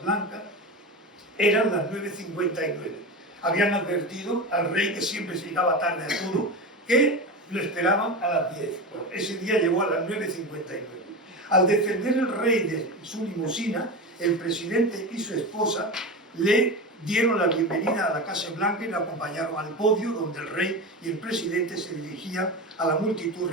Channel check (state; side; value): normal; both; correlation 0.24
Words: Blanca, eran las 9:59. Habían advertido al rey, que siempre se llegaba tarde a todo, que lo esperaban a las 10. Bueno, ese día llegó a las 9:59. Al defender el rey de su limusina, el presidente y su esposa le dieron la bienvenida a la Casa Blanca y la acompañaron al podio donde el rey y el presidente se dirigían a la multitud